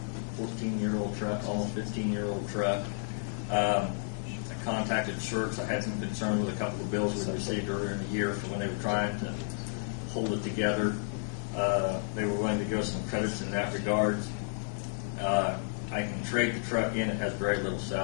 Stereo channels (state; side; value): silent; right; 57 dB below the other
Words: 14-year-old truck, almost 15-year-old truck. I contacted Shirks. I had some concern with a couple of bills we received earlier in the year for when they were trying to hold it together. They were willing to give us some credits in that regard. I can trade the truck in. It has very little